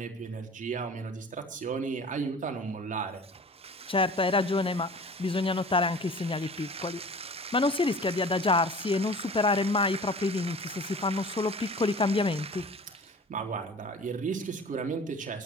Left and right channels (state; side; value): normal; both; correlation 0.42